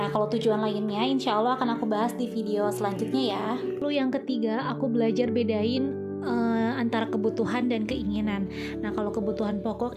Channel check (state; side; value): identical; both; correlation 1.00